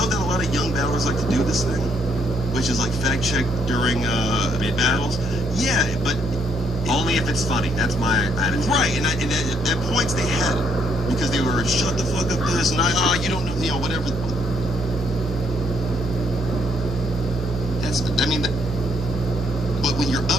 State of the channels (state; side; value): normal; both; correlation 0.71